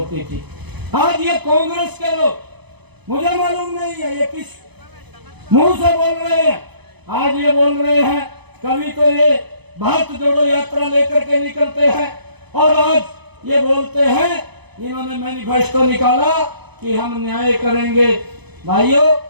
थी। आज ये कांग्रेस के लोग, मुझे मालूम नहीं है ये किस मुंह से बोल रहे हैं। आज ये बोल रहे हैं, कभी तो ये भारत जोड़ो यात्रा लेकर के निकलते हैं और आज ये बोलते हैं, इन्होंने मैनिफेस्टो निकाला कि हम न्याय करेंगे। भाइयों,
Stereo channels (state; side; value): late; left; 0.99 ms